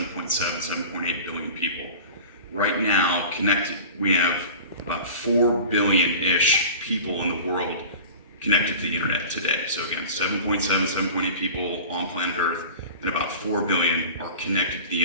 7.8 billion people. Right now, connected, we have about 4 billion-ish people in the world connected to the internet today. So again, 7.7, 7.8 people on planet Earth, and about 4 billion are connected to the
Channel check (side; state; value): both; inverted; correlation -0.38